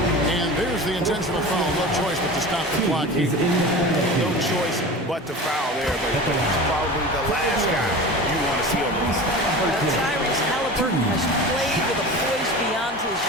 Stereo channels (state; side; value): normal; both; correlation 0.33